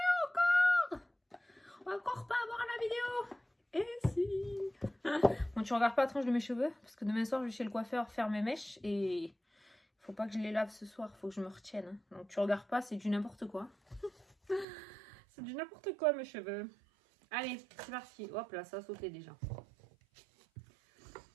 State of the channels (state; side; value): drops out; left; at 14.7 s